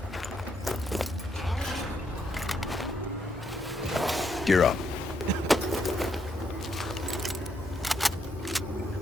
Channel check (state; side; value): normal; both; correlation 0.76